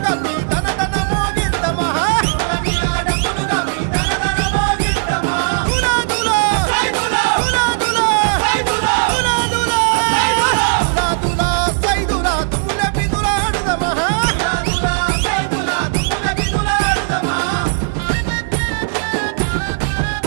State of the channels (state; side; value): silent; left; 68 dB below the other